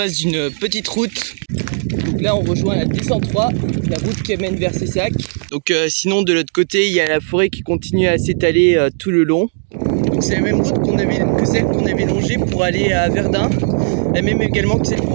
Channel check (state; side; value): silent; left; digital silence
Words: d'une petite route. Donc là on rejoint la 203, la route qui mène vers Cessac. Donc sinon de l'autre côté il y a la forêt qui continue à s'étaler tout le long. Donc c'est la même route que celle qu'on avait longée pour aller à Verdun. La même également que celle